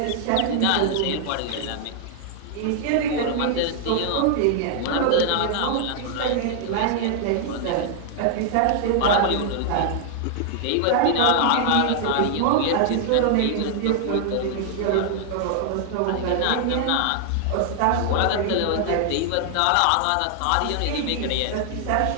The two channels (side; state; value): both; different; correlation 0.00